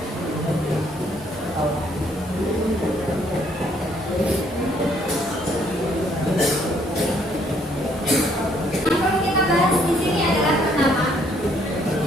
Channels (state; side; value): normal; both; correlation 0.66